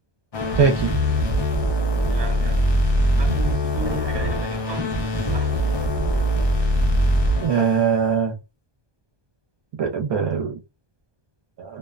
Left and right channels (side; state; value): left; late; 1.2 ms